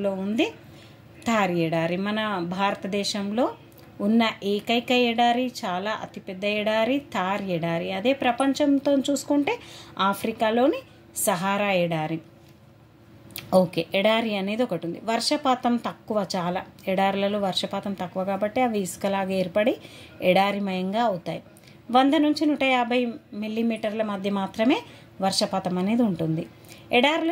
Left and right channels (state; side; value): identical; both; correlation 1.00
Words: ఉంది. థార్ ఎడారి మన భారతదేశంలో ఉన్న ఏకైక ఎడారి, చాలా అతిపెద్ద ఎడారి థార్ ఎడారి. అదే ప్రపంచంతో చూసుకుంటే ఆఫ్రికాలోని సహారా ఎడారి. ఓకే, ఎడారి అనేది ఒకటి ఉంది. వర్షపాతం తక్కువ, చాలా ఎడారులలో వర్షపాతం తక్కువ కాబట్టి అవి ఇసుకలాగా ఏర్పడి ఎడారిమయంగా అవుతాయి. 100 నుంచి 150 మిల్లీమీటర్ల మధ్య మాత్రమే వర్షపాతం అనేది ఉంటుంది.